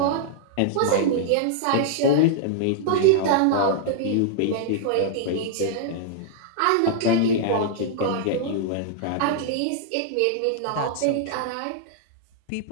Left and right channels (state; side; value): different; both; correlation -0.01